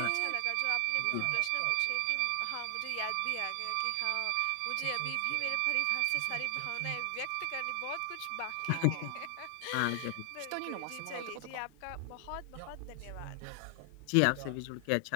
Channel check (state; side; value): different; both; correlation 0.00